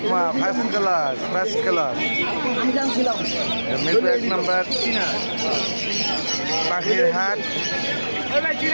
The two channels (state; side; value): inverted; both; correlation -1.00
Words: ফার্স্ট ক্লাস মিরপুর 1 নম্বর পাখির হাট